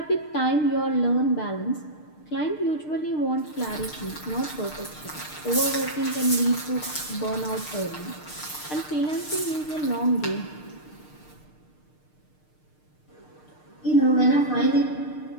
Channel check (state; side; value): late; right; 6.6 ms